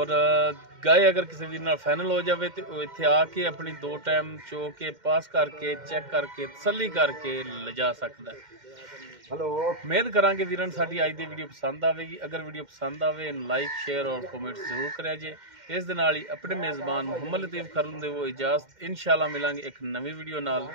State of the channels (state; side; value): late; left; 2.1 ms